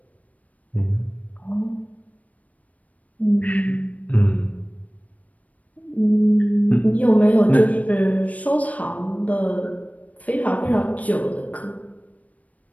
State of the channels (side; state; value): right; late; 0.070 ms